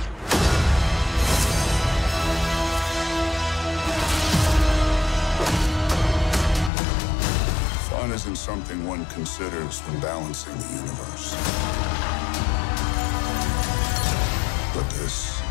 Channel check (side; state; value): right; drops out; at 6.7 s